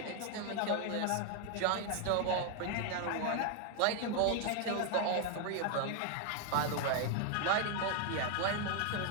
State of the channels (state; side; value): different; both; correlation 0.00